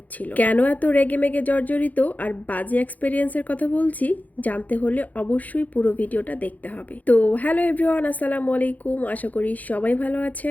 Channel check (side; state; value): right; late; 0.079 ms